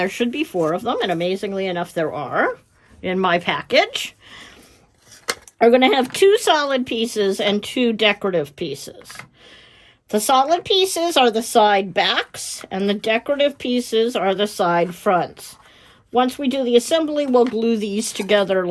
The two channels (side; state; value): both; identical; correlation 1.00